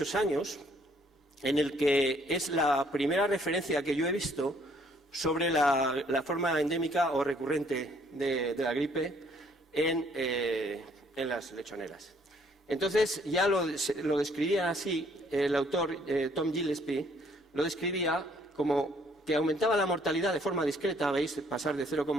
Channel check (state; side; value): normal; both; correlation 0.64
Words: años en el que es la primera referencia que yo he visto sobre la forma endémica o recurrente de la gripe en las lechoneras. Entonces, ya lo describía así, el autor Tom Gillespie lo describía como que aumentaba la mortalidad de forma discreta, veis, pasar de 0,9,